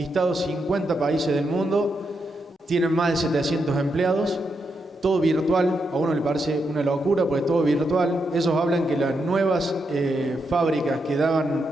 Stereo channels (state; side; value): normal; both; correlation 0.83